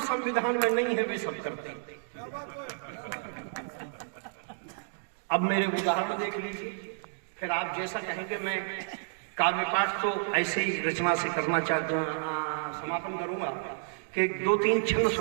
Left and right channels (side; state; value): left; silent; digital silence